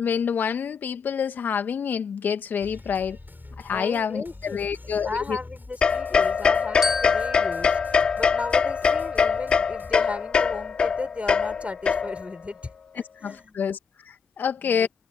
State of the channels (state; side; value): quieter; right; 5.7 dB